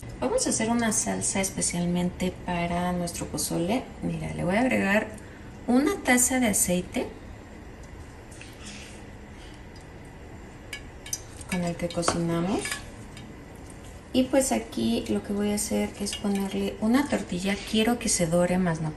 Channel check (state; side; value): identical; both; correlation 1.00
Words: Vamos a hacer una salsa especialmente para nuestro pozole. Mira, le voy a agregar una taza de aceite con el que cocinamos. Y pues aquí lo que voy a hacer es ponerle una tortilla. Quiero que se dore más no